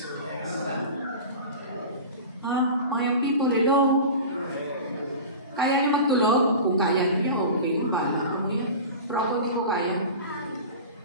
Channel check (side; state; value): both; inverted; correlation -0.33